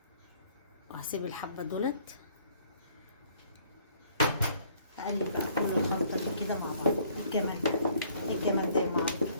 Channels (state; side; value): inverted; both; correlation -0.61